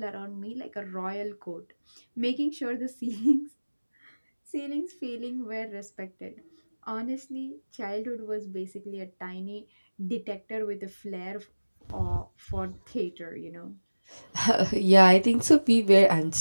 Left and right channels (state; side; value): inverted; both; correlation -1.00